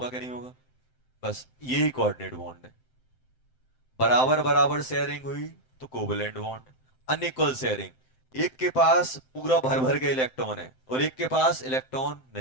क्या, नहीं होगा। बस यही कोऑर्डिनेट बॉन्ड है। बराबर बराबर शेयरिंग हुई तो कोवलेंट बॉन्ड। अनइक्वल शेयरिंग, एक के पास पूरा भर भर के इलेक्ट्रॉन है और एक के पास इलेक्ट्रॉन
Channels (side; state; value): right; late; 7.7 ms